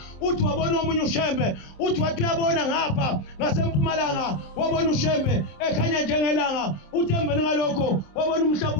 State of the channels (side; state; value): right; late; 26 ms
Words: uthi wabona omunye uShembe uthi wathi uyabona ngapha ngasempumalanga wabona uShembe ekhanya njengelanga uthi emveni ngalokho wabona umhlaba